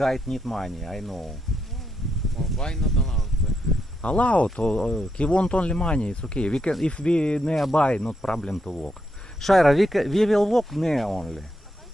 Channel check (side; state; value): both; normal; correlation 0.80